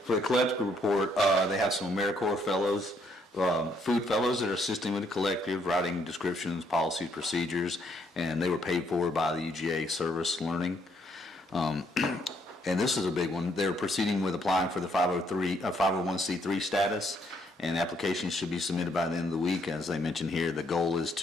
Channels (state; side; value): normal; both; correlation 0.70